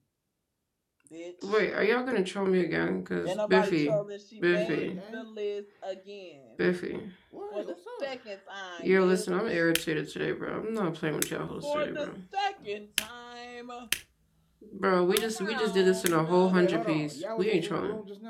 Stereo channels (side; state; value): both; identical; correlation 1.00